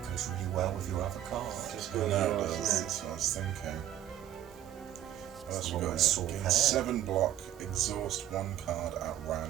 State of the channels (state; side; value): quieter; left; 11.9 dB